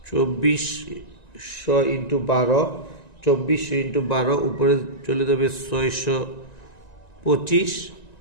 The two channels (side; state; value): right; late; 1.9 ms